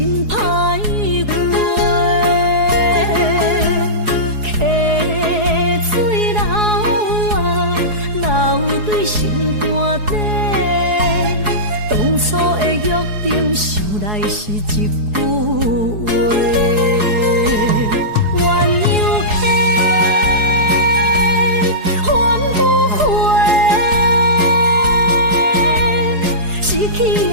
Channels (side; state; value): left; late; 4.8 ms